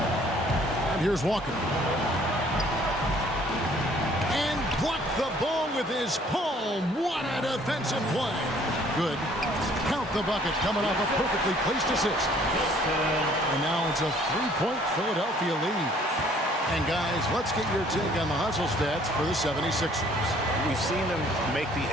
And here's Walker. And blocked the ball with his palm. What a defensive play. Good. Count the bucket coming off a perfectly placed assist. And now it's a 3-point Philadelphia lead. And guys, let's get your take on the hustle stats for the 76ers. We've seen them make the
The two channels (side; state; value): both; normal; correlation 0.58